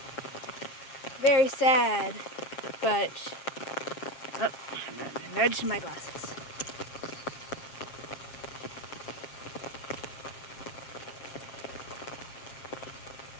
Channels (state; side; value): late; right; 7.4 ms